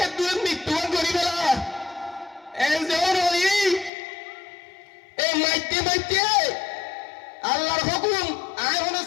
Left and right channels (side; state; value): right; drops out; at 3.9 s